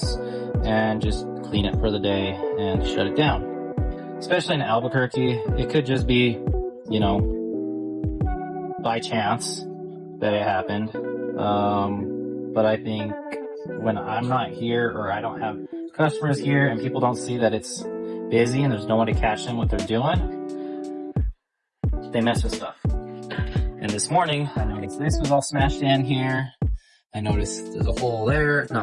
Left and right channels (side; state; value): both; identical; correlation 1.00